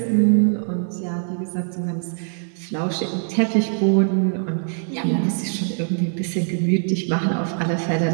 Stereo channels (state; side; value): silent; left; digital silence